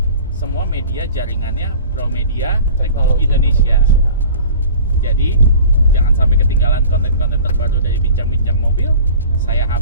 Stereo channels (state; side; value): inverted; both; correlation -0.41